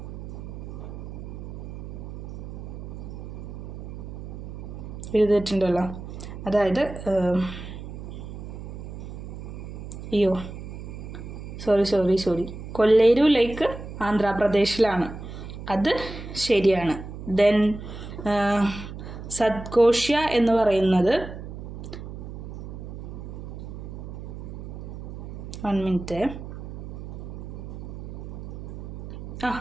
എഴുതിയിട്ടുണ്ടല്ലോ, അതായത് സോറി കൊല്ലേരു ലേക്ക് ആന്ധ്രാപ്രദേശിലാണ്, അത് ശരിയാണ്. ദെൻ സത്കോഷ്യ എന്ന് പറയുന്നത് 1 minute.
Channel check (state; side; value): noise; right; hum, 10 dB below the sound